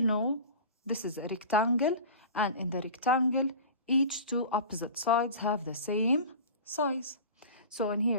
this is a rectangle, and in the rectangle, each two opposite sides have the same size. So in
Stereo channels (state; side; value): inverted; both; correlation -0.35